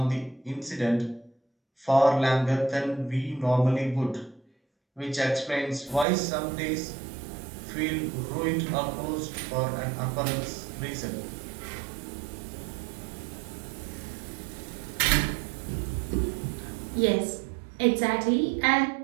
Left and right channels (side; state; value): left; drops out; at 6.1 s